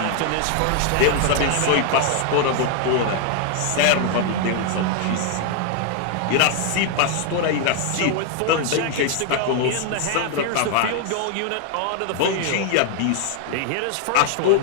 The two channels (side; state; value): both; different; correlation 0.00